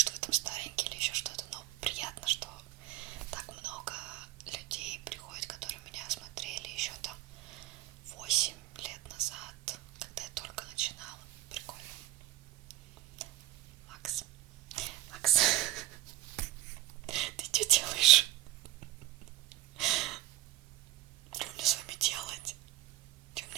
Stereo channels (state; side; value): quieter; left; 15.1 dB